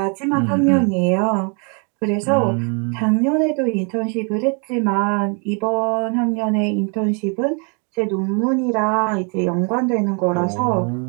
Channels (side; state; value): left; quieter; 36.7 dB